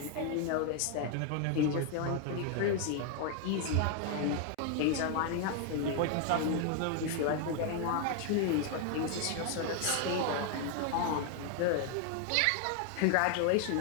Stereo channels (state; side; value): different; both; correlation 0.00